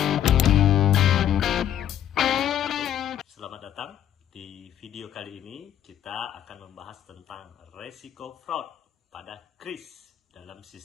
Selamat datang. Di video kali ini kita akan membahas tentang resiko fraud pada kris dalam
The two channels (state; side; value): quieter; right; 10.6 dB